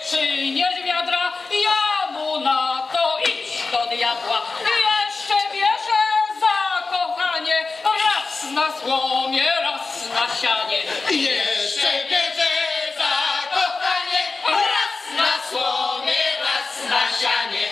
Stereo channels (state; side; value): quieter; right; 4.0 dB